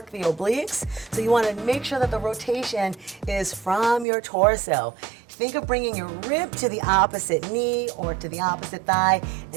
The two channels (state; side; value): drops out; left; at 4.0 s